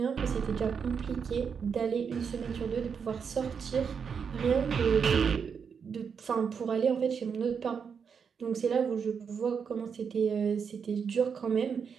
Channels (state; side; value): quieter; left; 6.5 dB